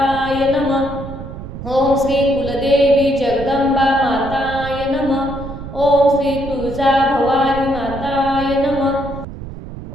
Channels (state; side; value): noise; right; rumble, 11 dB below the sound